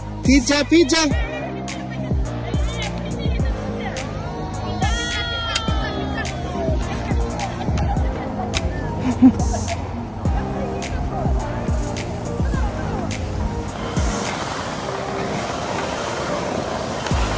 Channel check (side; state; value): both; identical; correlation 1.00